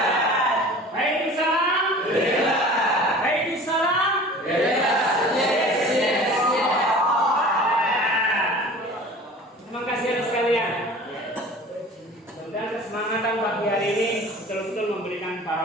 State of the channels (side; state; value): both; normal; correlation 0.42